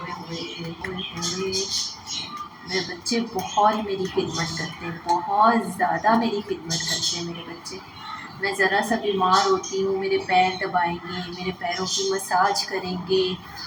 होए होए होए। मेरे बच्चे बहुत मेरी खिदमत करते हैं, बहुत ज़्यादा मेरी खिदमत करते हैं मेरे बच्चे। मैं ज़रा सा बीमार होती हूँ, मेरे पैर दबाएंगे, मेरे पैरों की मसाज करेंगे,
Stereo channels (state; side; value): identical; both; correlation 1.00